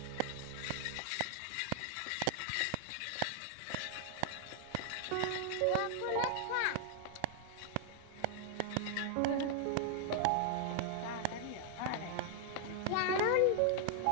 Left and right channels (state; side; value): different; both; correlation 0.00